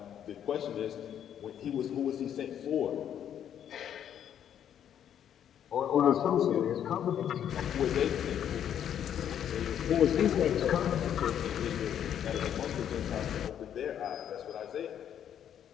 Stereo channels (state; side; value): quieter; right; 9.6 dB